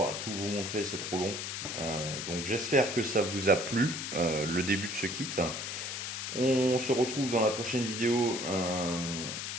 tout vous montrer, c'est trop long. Donc j'espère que ça vous a plu le début de ce kit. On se retrouve dans la prochaine vidéo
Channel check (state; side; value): noise; left; hiss, 5 dB below the sound